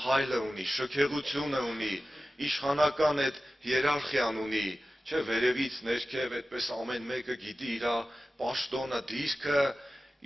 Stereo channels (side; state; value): both; normal; correlation 0.95